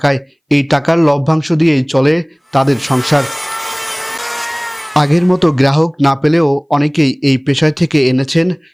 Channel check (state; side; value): identical; both; correlation 1.00